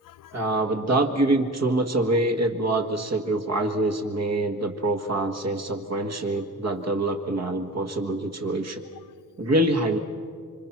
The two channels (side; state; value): both; normal; correlation 0.35